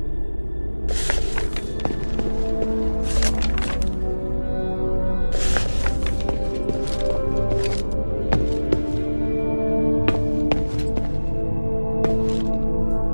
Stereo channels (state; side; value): inverted; both; correlation -1.00